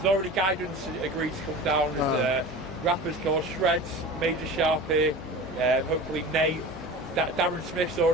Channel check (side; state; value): both; normal; correlation 0.35